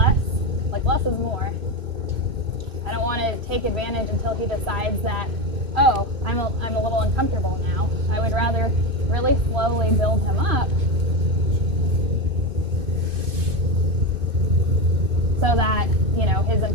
like less is more. I don't want to take advantage until he decides that, oh, I'm a little uncomfortable now. I would rather really slowly build him up so that, his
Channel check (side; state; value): left; late; 2.5 ms